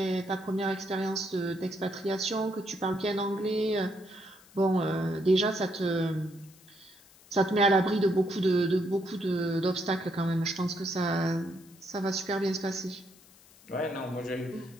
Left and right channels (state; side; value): noise; left; hiss, 25 dB below the sound